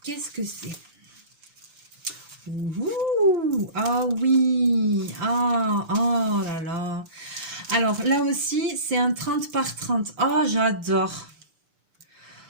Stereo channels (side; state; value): left; late; 6.8 ms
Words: qu'est-ce que c'est? Ah oui, oh là là. Alors, là aussi, c'est un 30 par 30. Oh, j'adore.